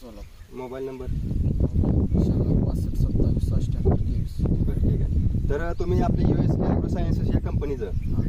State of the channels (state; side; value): identical; both; correlation 1.00